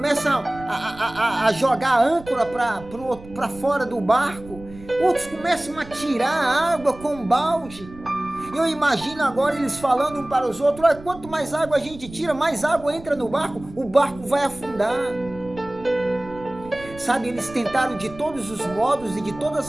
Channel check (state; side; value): noise; right; rumble, 18 dB below the sound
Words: a jogar a âncora para fora do barco, outros começam a tirar a água com um balde. Eu imagino agora eles falando um para os outros: olha, quanto mais água a gente tira, mais água entra no barco, o barco vai afundar. Sabe, eles tentaram de todos os modos e de todas